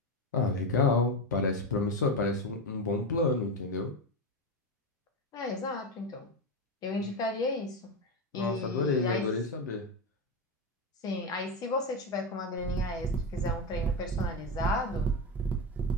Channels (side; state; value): both; normal; correlation 0.14